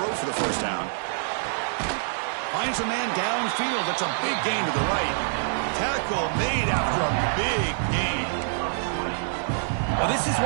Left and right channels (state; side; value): silent; left; 61 dB below the other